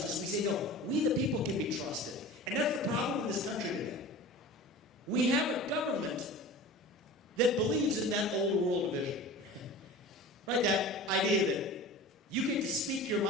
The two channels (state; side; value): normal; both; correlation 0.37